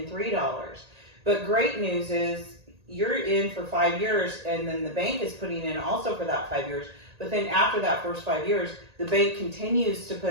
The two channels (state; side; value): late; left; 1.8 ms